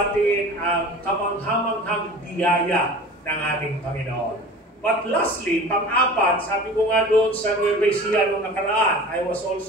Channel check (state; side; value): normal; both; correlation 0.39